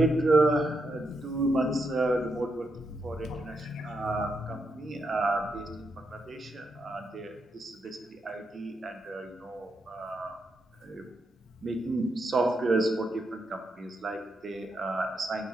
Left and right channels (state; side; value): normal; both; correlation 0.82